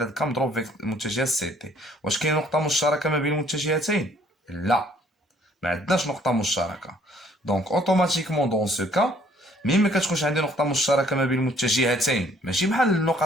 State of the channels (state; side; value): normal; both; correlation 0.61